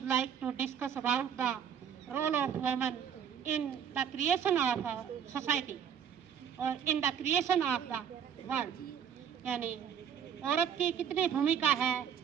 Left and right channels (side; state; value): left; quieter; 8.3 dB